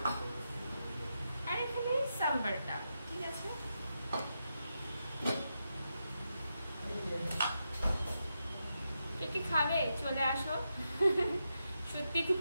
আর এখানে সাম্বারটা, ঠিক আছে। কি খাবে চলে আসো। সত্যি খুব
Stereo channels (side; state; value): both; inverted; correlation -0.86